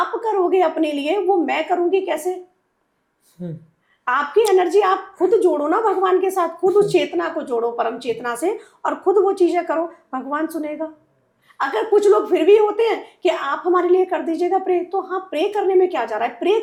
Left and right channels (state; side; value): identical; both; correlation 1.00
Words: करोगे अपने लिए वो मैं करूंगी कैसे? आपकी एनर्जी आप खुद जोड़ो ना भगवान के साथ, खुद उस चेतना को जोड़ो परम चेतना से, और खुद वो चीजें करो, भगवान सुनेगा। अगर कुछ लोग फिर भी होते हैं कि आप हमारे लिए कर दीजिएगा प्रे, तो हाँ, प्रे करने में क्या जा रहा है, प्रे